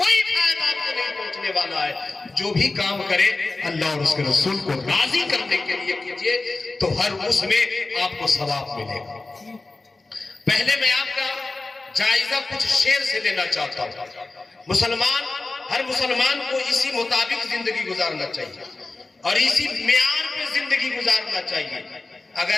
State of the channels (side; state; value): right; quieter; 3.3 dB